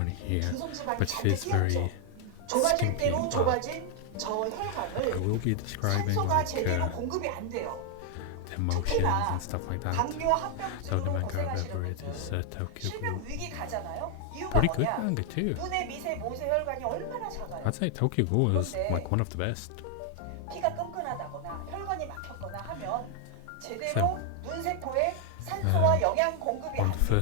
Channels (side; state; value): both; different; correlation 0.00